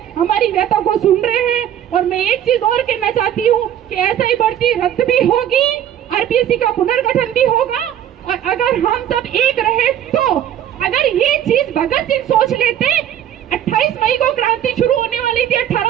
हमारी व्यथा को सुन रहे हैं। और मैं एक चीज और कहना चाहती हूँ कि ऐसा ही भर्ती रद्द भी होगी, आरपीएससी का पुनर्गठन भी होगा, और अगर हम सब एक रहे तो। अगर ये चीज भगत सिंह सोच लेते, 28 मई को क्रांति शुरू होने वाली थी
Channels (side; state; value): left; quieter; 10.6 dB